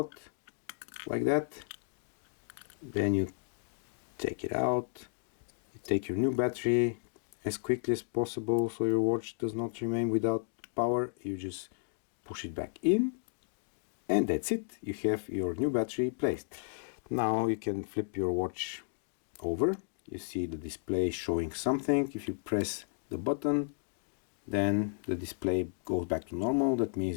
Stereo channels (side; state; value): right; silent; digital silence